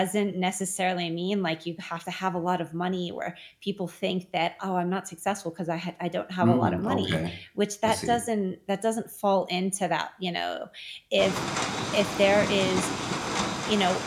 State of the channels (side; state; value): both; identical; correlation 1.00